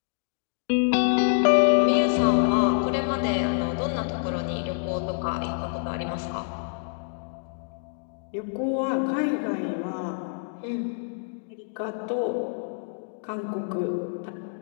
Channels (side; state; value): right; silent; digital silence